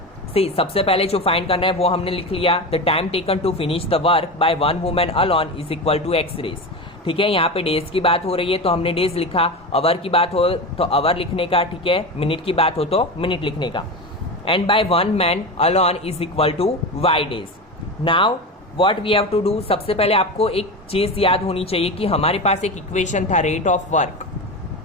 See, सबसे पहले जो find करना है वो हमने लिख लिया, the time taken to finish the work by 1 women alone is equal to x days. ठीक है, यहाँ पे डेज की बात हो रही है तो हमने डेज लिखा, आवर की बात हो तो आवर लिखने का, ठीक है, मिनट की बात हो तो मिनट लिखने का। And by 1 man alone is equal to y days. Now what we have to do, सबसे पहले आपको एक चीज याद होनी चाहिए कि हमारे पास एक इक्वेशन था, रेट ऑफ वर्क।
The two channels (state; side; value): normal; both; correlation 0.23